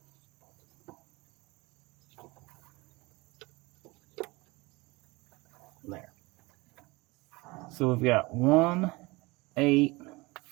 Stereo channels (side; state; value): left; quieter; 23.6 dB